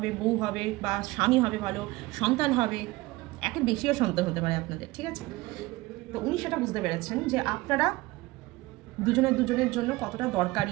বউ হবে বা স্বামী হবে, ভালো সন্তান হবে, একের বেশিও সন্তান হতে পারে আপনাদের। ঠিক আছে, তো উনি সেটা বুঝতে পেরেছেন যে আপনারা দুজনের জন্য কতটা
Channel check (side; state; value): left; quieter; 20.3 dB